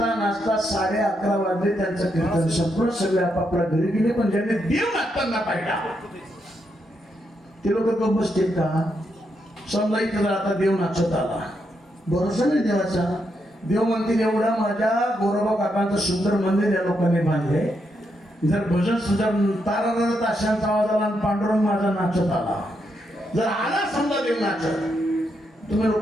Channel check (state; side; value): normal; both; correlation 0.80